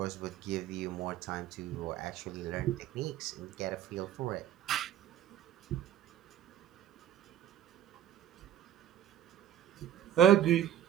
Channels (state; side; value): quieter; left; 10.7 dB